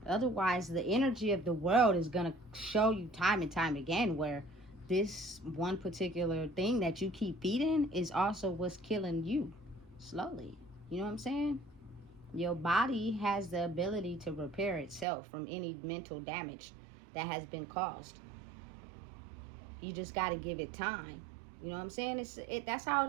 Otherwise, the energy of the world is going to show you time and time again where this one particular thing that you keep feeding is also what's killing you slowly. You know what I'm saying? Your body has the ability to repair itself from any mental damage that has been caused. You just got to give it time. You know what I'm saying? That's how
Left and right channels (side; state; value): left; drops out; at 15.1 s